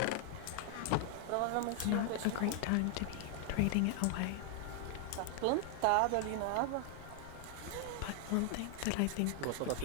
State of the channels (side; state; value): both; different; correlation 0.00